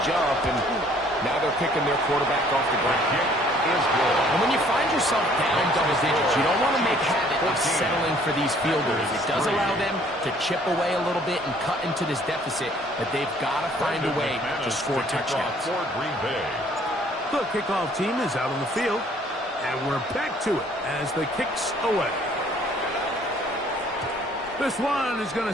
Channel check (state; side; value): normal; both; correlation 0.59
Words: jump, and now they're picking their quarterback off the ground. And when you find yourself down double digits, you don't want to make habit of settling for these field goals. It does allow them to chip away a little bit and cut into this deficit, but they've got to find a way to score touchdowns. The kickoff team is out on the field, and we're back to it as the kicks away. This one is going